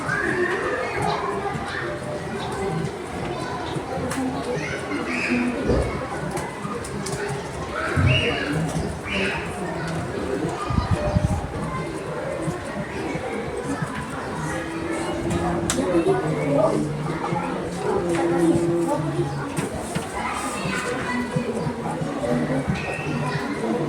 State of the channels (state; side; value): identical; both; correlation 1.00